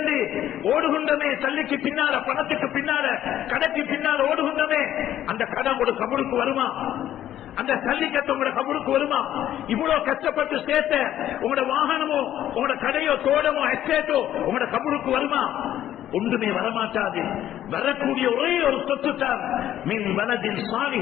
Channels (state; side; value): quieter; right; 12.0 dB